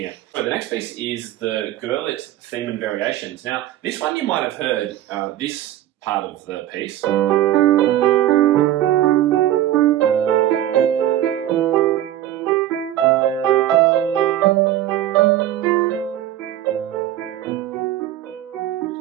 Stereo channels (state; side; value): quieter; left; 12.9 dB